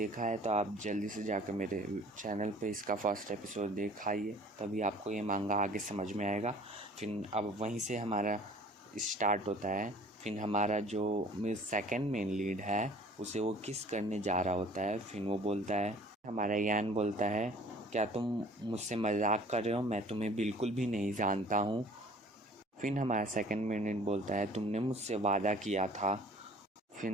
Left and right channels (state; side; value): normal; both; correlation 0.50